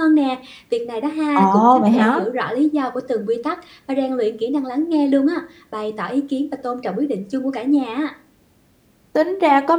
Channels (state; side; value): identical; both; correlation 1.00